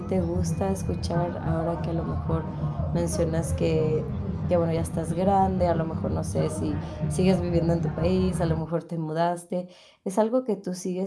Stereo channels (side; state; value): both; identical; correlation 1.00